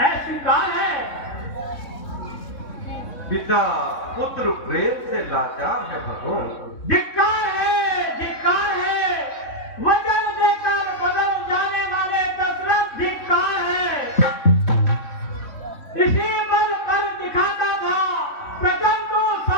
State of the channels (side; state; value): right; late; 3.6 ms